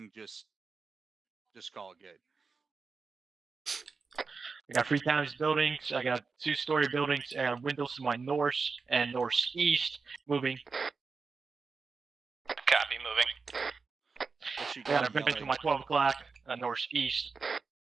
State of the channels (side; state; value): left; quieter; 4.7 dB